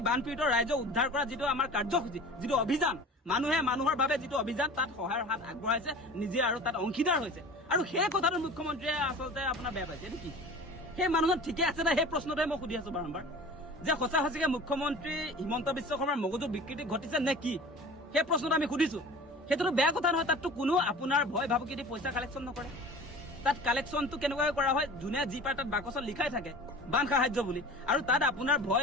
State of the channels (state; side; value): normal; both; correlation 0.39